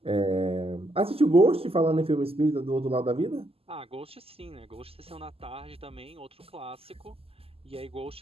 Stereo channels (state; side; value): late; left; 0.28 ms